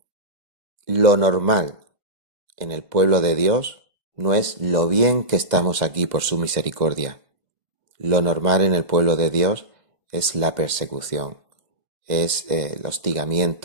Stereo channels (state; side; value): late; left; 2.1 ms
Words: lo normal en el pueblo de Dios no es lo bien que estamos aquí por su misericordia. Lo normal en el pueblo de Dios es la persecución, es el